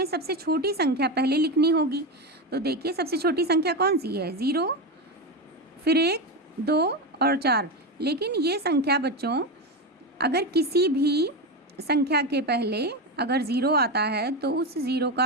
सबसे छोटी संख्या पहले लिखनी होगी। तो देखिए सबसे छोटी संख्या कौन सी है? 0, फिर 1, 2 और 4। लेकिन ये संख्या बच्चों अगर किसी भी संख्या के पहले अगर 0 आता है तो उस 0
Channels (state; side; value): normal; both; correlation 0.15